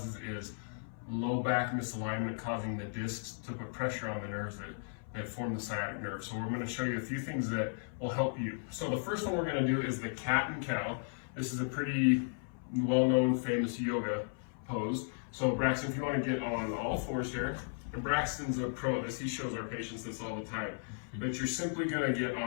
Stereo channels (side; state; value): right; silent; 54 dB below the other